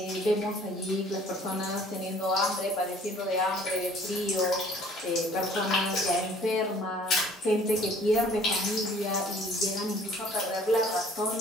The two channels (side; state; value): both; normal; correlation 0.54